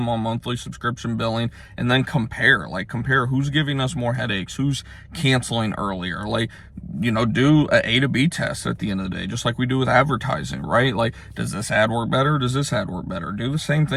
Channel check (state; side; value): identical; both; correlation 1.00